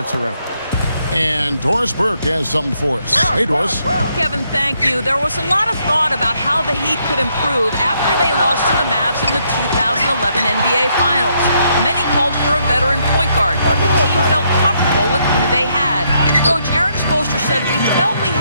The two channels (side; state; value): both; inverted; correlation -0.74